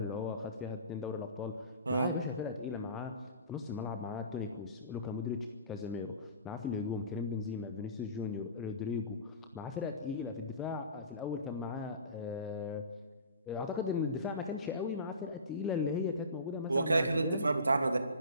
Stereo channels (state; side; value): inverted; both; correlation -0.38